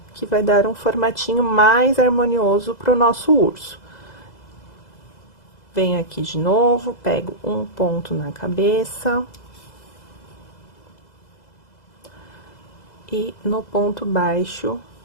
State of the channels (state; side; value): late; right; 2.0 ms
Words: que vai dar um formatinho mais harmonioso para o nosso urso. Venho aqui de novo, pego um ponto na cabeça. E no ponto baixo